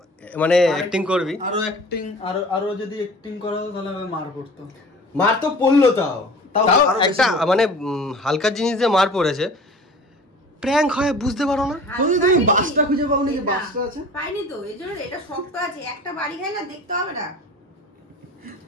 মানে অ্যাক্টিং করবি। আরো অ্যাক্টিং, আরো যদি অ্যাক্টিং করা হতো তাহলে আমি মার করতো। মার তো পড়লো, তাও তাও তাও আরো বেশি একটা করে। মানে হালকা জিনিস দিয়ে মার পড়েছে। প্র্যাঙ্ক হয় বুঝতে পারো না? তুমি বাসটা খুঁজে পাও নাকি? বাসটা আছে পাইনি তো, এই জন্য এটা শক্ত আছে। একটা বাড়ি খাই না, দেখতে হবে না।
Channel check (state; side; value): normal; both; correlation 0.42